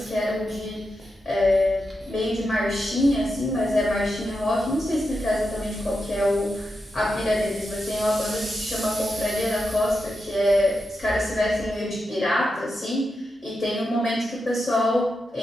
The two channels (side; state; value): both; normal; correlation 0.87